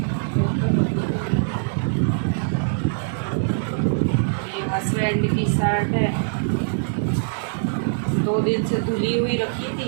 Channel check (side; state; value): left; silent; digital silence